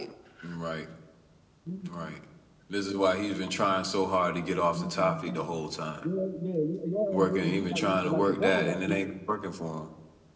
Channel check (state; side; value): identical; both; correlation 1.00